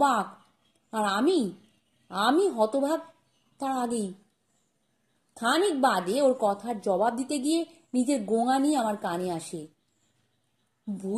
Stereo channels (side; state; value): both; identical; correlation 1.00